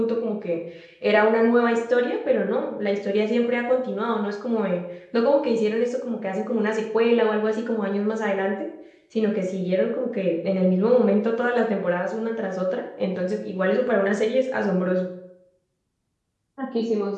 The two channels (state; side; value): identical; both; correlation 1.00